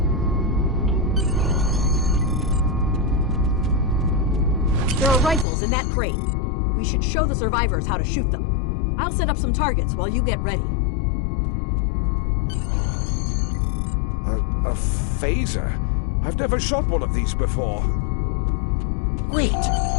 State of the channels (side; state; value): right; drops out; at 5.5 s